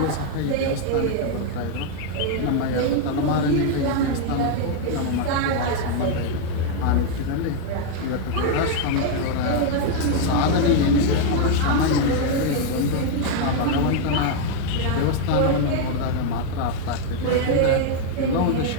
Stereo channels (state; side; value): different; both; correlation 0.00